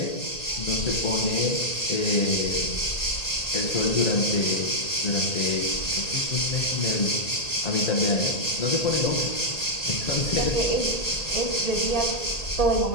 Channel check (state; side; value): late; right; 1.8 ms